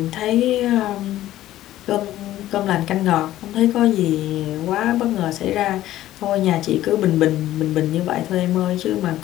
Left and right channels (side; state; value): right; quieter; 14.1 dB